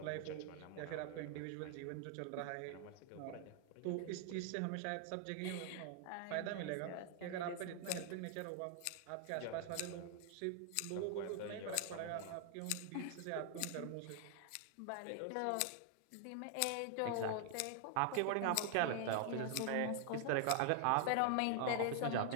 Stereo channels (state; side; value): different; both; correlation 0.00